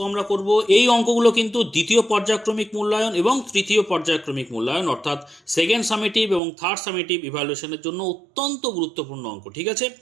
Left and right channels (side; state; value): left; drops out; at 6.4 s